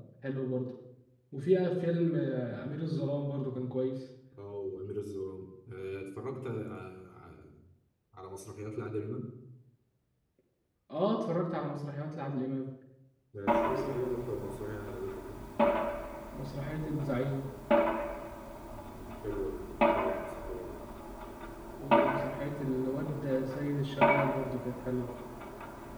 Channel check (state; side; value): identical; both; correlation 1.00